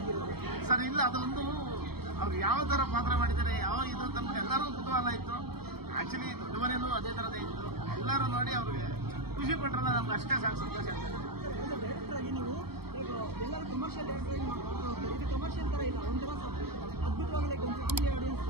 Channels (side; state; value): left; late; 0.96 ms